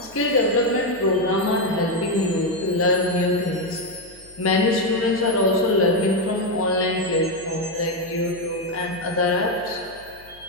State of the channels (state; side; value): noise; left; hum, 25 dB below the sound